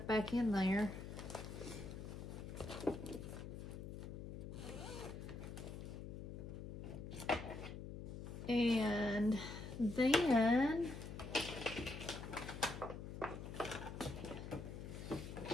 back in there. And then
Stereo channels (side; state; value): left; noise; hum, 8 dB below the sound